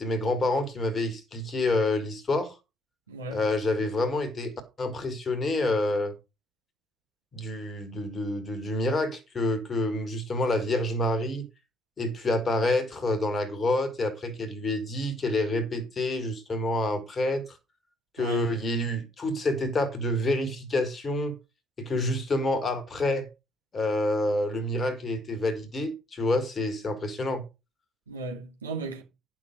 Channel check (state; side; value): normal; both; correlation 0.68